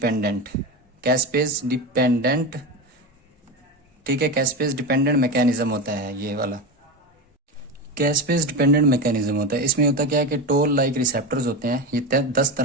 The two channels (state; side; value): normal; both; correlation 0.19